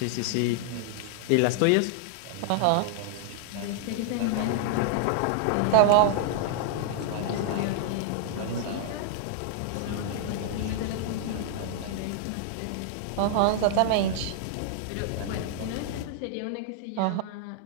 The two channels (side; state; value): both; different; correlation -0.01